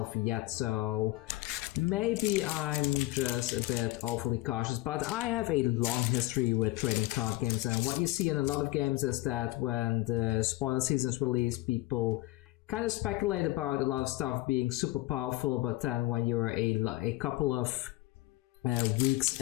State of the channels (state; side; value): quieter; right; 19.1 dB